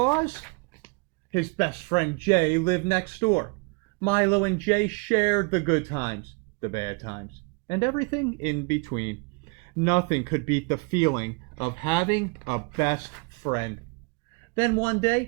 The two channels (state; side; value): quieter; left; 31.0 dB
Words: his best friend Jay lived next door. Milo and Jay shared the good times, the bad times, and everything in between. Nothing could beat the feeling of having a best friend. Then one